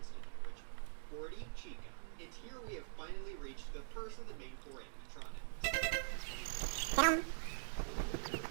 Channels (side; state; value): left; silent; digital silence